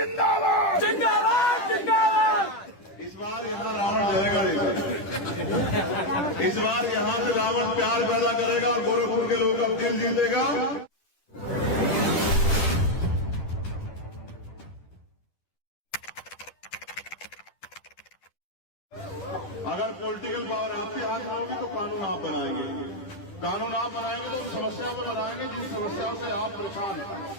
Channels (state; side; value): late; right; 10 ms